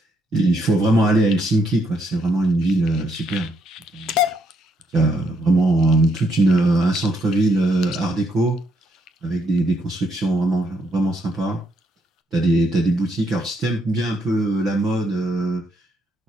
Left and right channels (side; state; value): both; normal; correlation 0.74